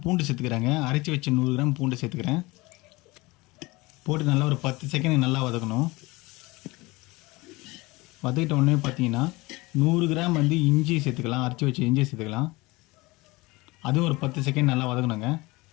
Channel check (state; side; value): quieter; right; 22.5 dB